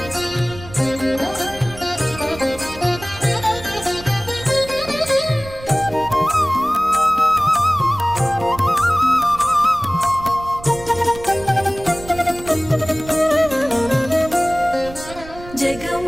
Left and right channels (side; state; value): right; noise; rumble, 16 dB below the sound